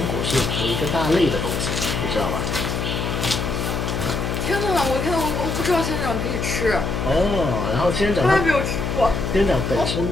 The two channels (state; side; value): noise; left; hum, 2 dB below the sound